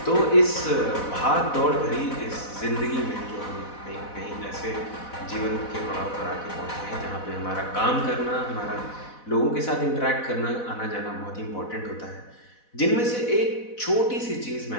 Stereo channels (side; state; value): right; late; 4.1 ms